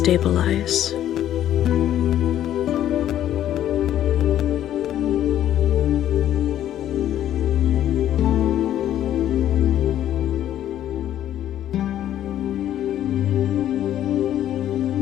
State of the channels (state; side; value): quieter; right; 11.6 dB